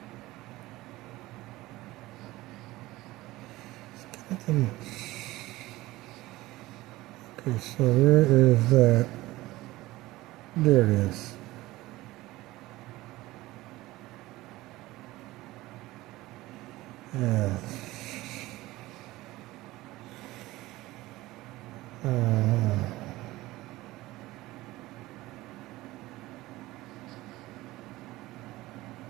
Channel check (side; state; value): left; quieter; 18.3 dB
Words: Okay, so where is that? There it is. Yeah.